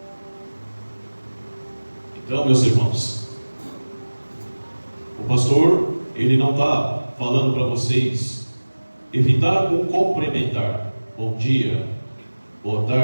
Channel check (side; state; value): both; inverted; correlation -1.00